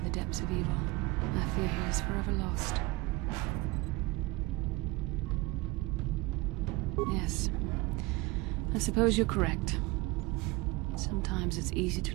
the depths of evil. I fear he is forever lost. Yes. I suppose you're correct. Sometimes it's easy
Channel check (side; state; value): left; quieter; 23.3 dB